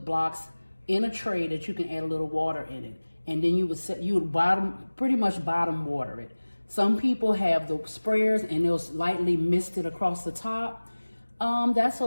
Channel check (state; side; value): inverted; both; correlation -1.00